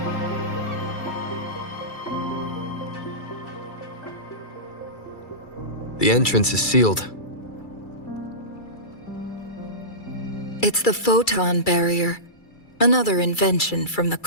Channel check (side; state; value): right; late; 2.3 ms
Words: The entrance is sealed. It's the photon barrier, another invention from the